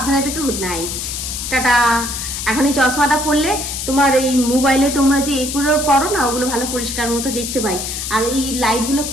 থেকো। Good night. টাটা। এখন এই চশমাটা পরলে তোমার এই মোবাইলে তোমরা যে এগুলো করো না, ওগুলো ভালো পরিষ্কার মতো দেখতে পাই। আর এই লাইটগুলো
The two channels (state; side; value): noise; left; hiss, 5 dB below the sound